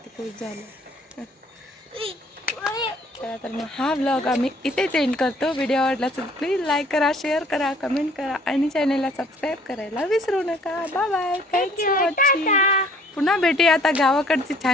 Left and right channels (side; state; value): both; normal; correlation 0.57